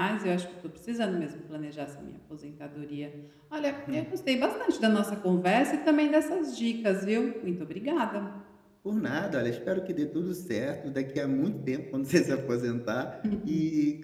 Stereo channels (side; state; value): both; identical; correlation 1.00